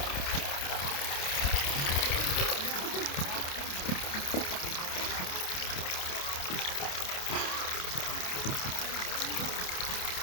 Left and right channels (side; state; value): right; late; 28 ms